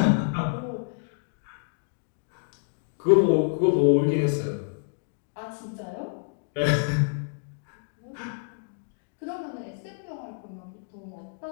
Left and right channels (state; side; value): silent; right; digital silence